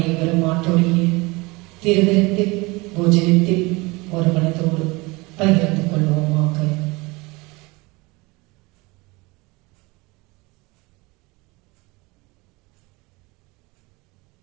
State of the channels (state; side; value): quieter; left; 24.4 dB